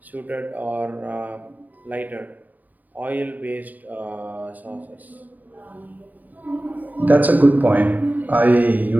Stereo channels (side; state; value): left; late; 0.082 ms